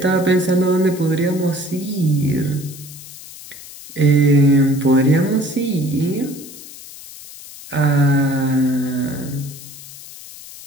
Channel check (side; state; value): left; noise; hiss, 16 dB below the sound